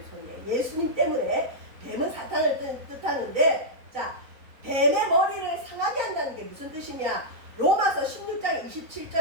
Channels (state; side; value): late; left; 3.9 ms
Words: 예수님 때문에 뱀은 사탄을 뜻하는데 자 뱀의 머리를 상하게 한다는 게 무슨 뜻이냐? 로마서 16장